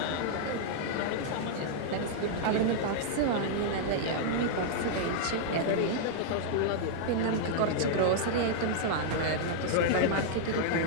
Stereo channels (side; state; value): both; different; correlation -0.01